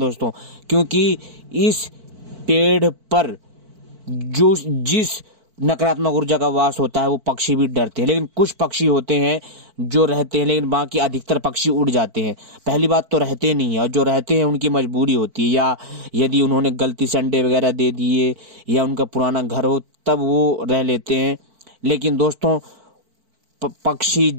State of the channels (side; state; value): left; late; 4.5 ms